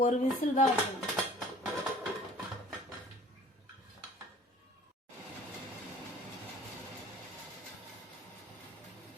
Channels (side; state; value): both; normal; correlation 0.50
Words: ஒரு விசில் தான் வைக்கணும்.